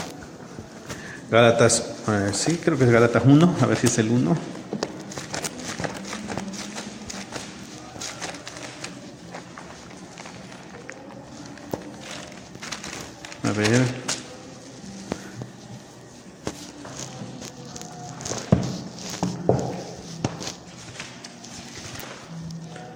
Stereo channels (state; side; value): identical; both; correlation 1.00